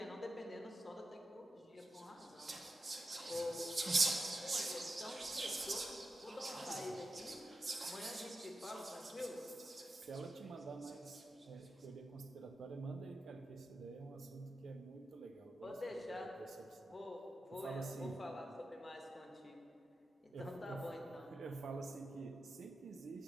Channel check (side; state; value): both; normal; correlation 0.91